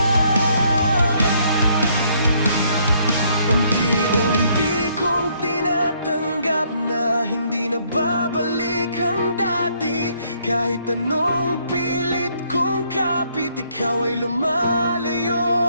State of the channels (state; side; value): inverted; both; correlation -0.68